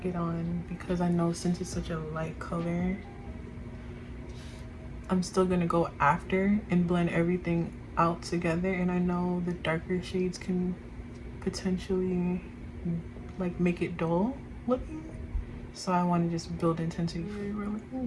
it on because I know since it's such a light color, I'm still gonna go after and blend everything out together, and I know the darker shades can potentially like make it dull looking, so I want to just build intensity. We're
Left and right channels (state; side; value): identical; both; correlation 1.00